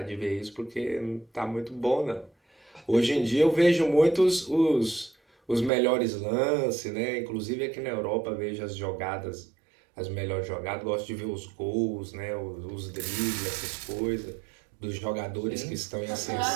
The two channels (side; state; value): left; drops out; at 5.7 s